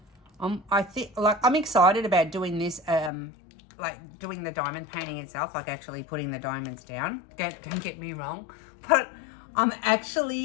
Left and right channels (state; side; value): drops out; right; at 3.1 s